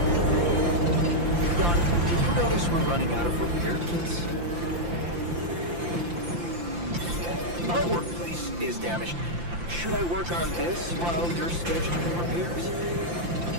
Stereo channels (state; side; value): late; left; 5.8 ms